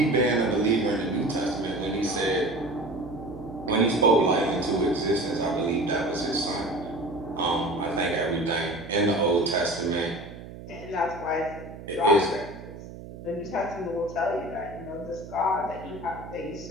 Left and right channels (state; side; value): noise; right; hum, 13 dB below the sound